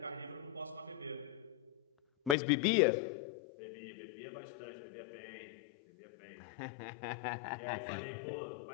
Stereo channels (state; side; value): drops out; right; at 2.4 s